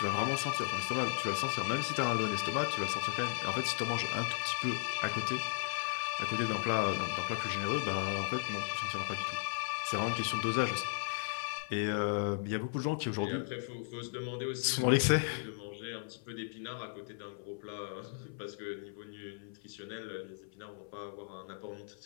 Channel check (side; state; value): right; silent; 54 dB below the other